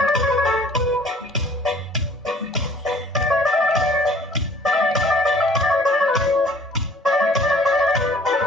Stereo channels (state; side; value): normal; both; correlation 0.53